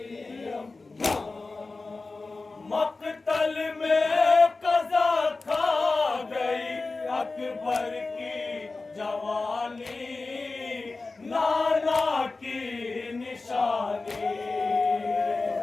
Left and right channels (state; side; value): quieter; right; 3.6 dB